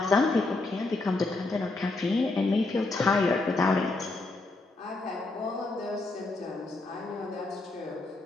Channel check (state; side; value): quieter; right; 3.2 dB